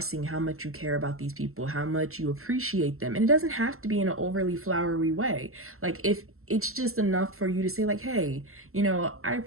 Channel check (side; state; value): left; late; 0.62 ms